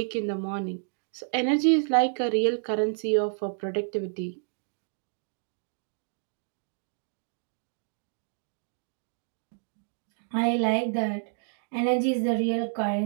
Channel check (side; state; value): left; silent; digital silence